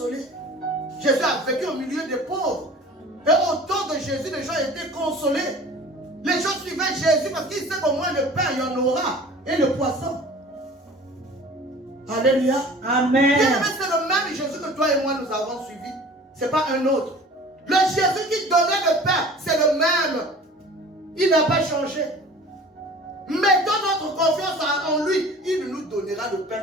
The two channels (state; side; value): normal; both; correlation 0.44